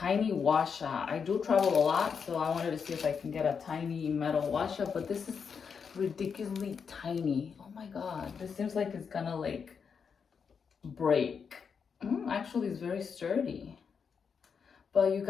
washa. I do travel a lot, so I wanted to see if I can get a tiny metal washa, but this is ridiculously tiny. Oh my god, this seems like it's gonna like break. Actually, it's very sturdy. But you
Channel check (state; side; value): quieter; right; 6.3 dB